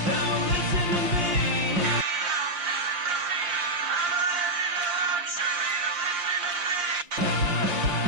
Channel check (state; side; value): late; left; 5.7 ms